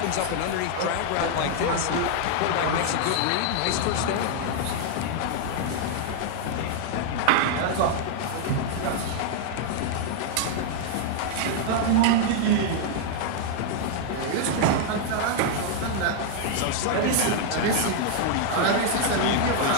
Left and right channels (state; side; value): different; both; correlation 0.00